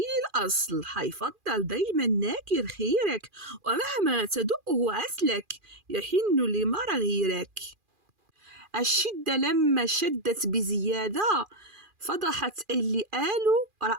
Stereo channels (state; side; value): late; left; 2.4 ms